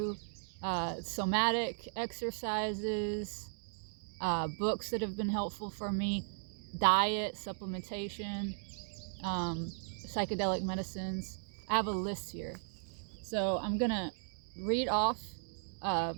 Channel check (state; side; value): silent; left; digital silence